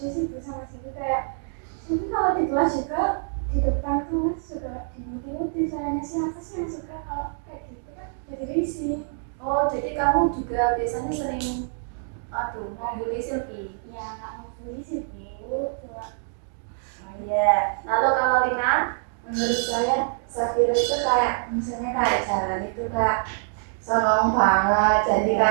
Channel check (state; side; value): silent; left; digital silence